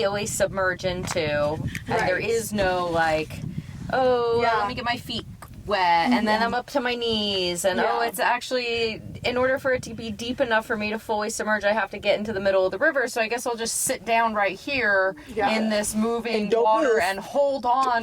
submerge into. And there Right. is no like, oh, Yeah. let me get my feet wet and then I'm up to my knees and Yeah. it's actually, in order for it to be deep enough for me to fully submerge, I have to get into the middle of the river, so I guess I'll just sit down right here Yeah. in this moving And don't water move. and hold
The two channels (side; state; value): both; identical; correlation 1.00